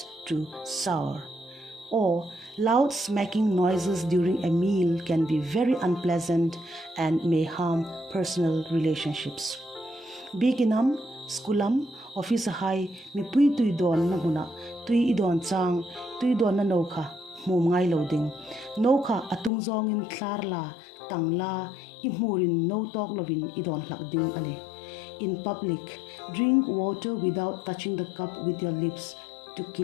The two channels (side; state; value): right; drops out; at 19.5 s